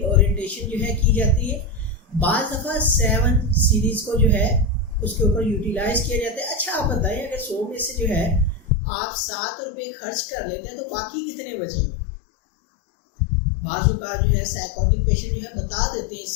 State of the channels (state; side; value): drops out; right; at 8.7 s